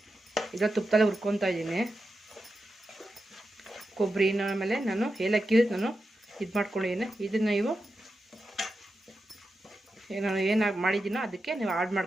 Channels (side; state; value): both; normal; correlation 0.89